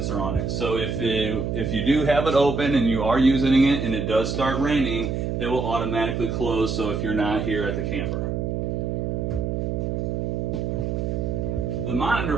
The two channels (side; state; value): right; noise; hum, 1 dB below the sound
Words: on it, so if you do have it open and you are using it and it does start raining, it will automatically close, so if you're not here at the camper. The monitor